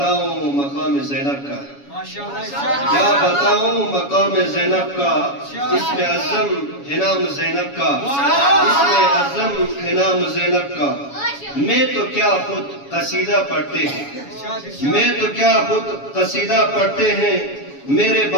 मकाम ज़ैनब का, क्या बताऊं मकाम ज़ैनब का, इसमें अज़म है नाम ज़ैनब का, इसमें अज़म है नाम ज़ैनब का। मैं तो क्या खुद कसीदा पढ़ते हैं, मैं तो क्या खुद कसीदा पढ़ते हैं। मेरे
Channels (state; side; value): late; right; 7.1 ms